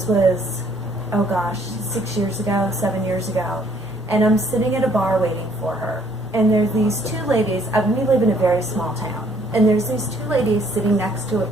was, oh gosh, 6 years ago, 7 years ago. And I'm sitting at a bar waiting for her. And there's these two ladies. We live in a very small town. And there's these two ladies sitting next to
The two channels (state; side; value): normal; both; correlation 0.63